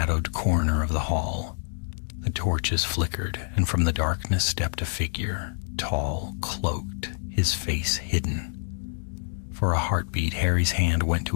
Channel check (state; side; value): silent; right; digital silence